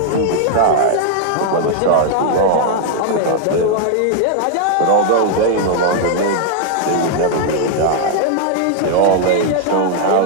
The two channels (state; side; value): different; both; correlation 0.00